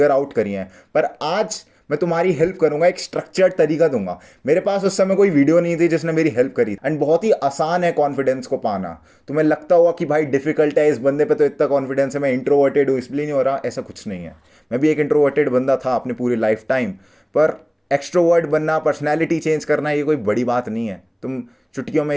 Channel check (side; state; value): both; identical; correlation 1.00